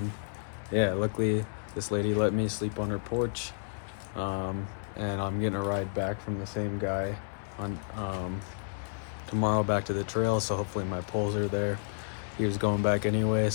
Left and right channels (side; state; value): right; silent; 57 dB below the other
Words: yeah, luckily this lady let me sleep on her porch, and I'm getting a ride back from the same guy on tomorrow back to the trail, so hopefully my poles are there. He was going back anyway,